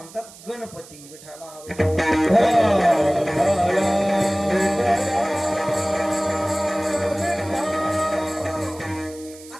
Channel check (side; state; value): right; noise; hiss, 20 dB below the sound